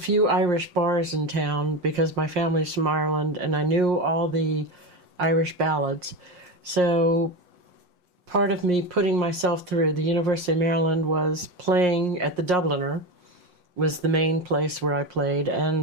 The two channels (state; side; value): late; left; 5.6 ms